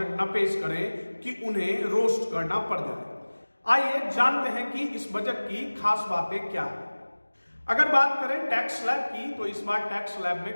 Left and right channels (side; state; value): both; inverted; correlation -1.00